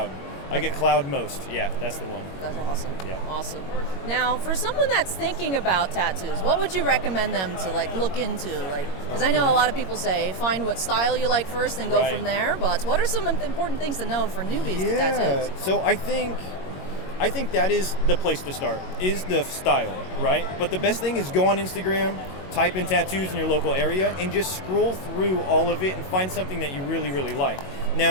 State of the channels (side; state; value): right; late; 21 ms